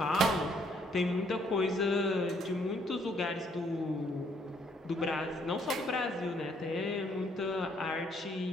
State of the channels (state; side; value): normal; both; correlation 0.67